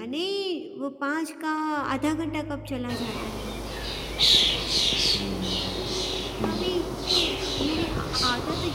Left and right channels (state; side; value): identical; both; correlation 1.00